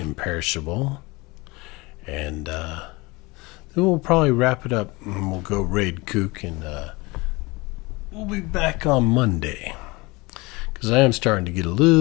And then we'll probably wrap it up and we'll go raid Kook, and we'll be back on Monday because I am starting to get a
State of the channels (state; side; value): quieter; right; 24.1 dB